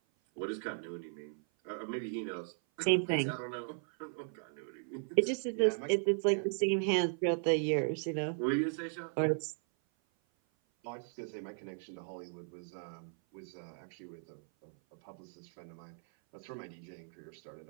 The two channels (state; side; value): silent; left; 53 dB below the other